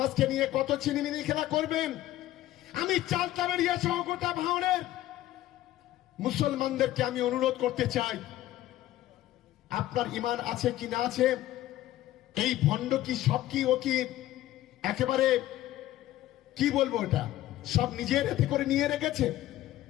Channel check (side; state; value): right; quieter; 14.5 dB